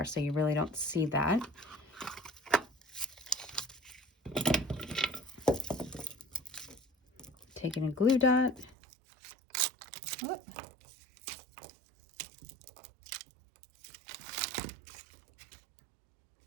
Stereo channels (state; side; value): drops out; left; at 8.8 s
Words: so you really don't see that. Taking a glue dot. Whoop.